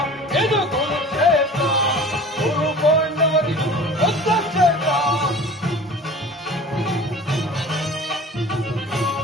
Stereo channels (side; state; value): both; normal; correlation 0.41